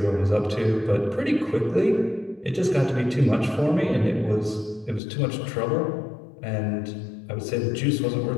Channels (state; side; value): drops out; right; at 5.0 s